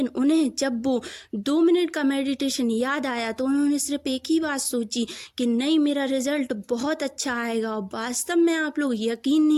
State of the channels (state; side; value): identical; both; correlation 1.00